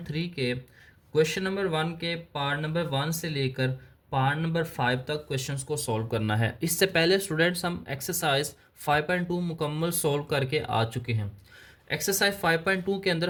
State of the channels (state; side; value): identical; both; correlation 1.00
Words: के क्वेश्चन नंबर 1 के पार्ट नंबर 1 से लेकर पार्ट नंबर 5 तक क्वेश्चंस को सॉल्व करना है। इससे पहले स्टूडेंट्स हम एक्सरसाइज 5.2 मुकम्मल सॉल्व करके आ चुके हैं। एक्सरसाइज 5.2 के